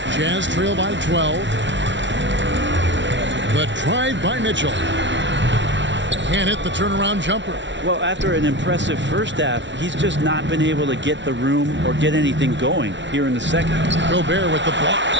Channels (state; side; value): late; left; 0.53 ms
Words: Jazz trail by 12. The drive by Mitchell. Can't hit the turnaround jumper. Well, after an impressive first half, he's just not been able to get the room or get anything going here in the second. Gobert with the block.